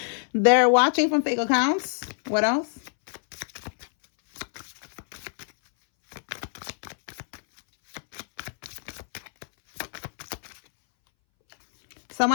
They're watching from fake accounts. What else?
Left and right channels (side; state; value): right; silent; 61 dB below the other